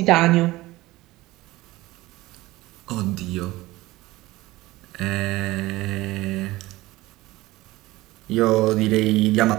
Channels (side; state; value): left; quieter; 18.8 dB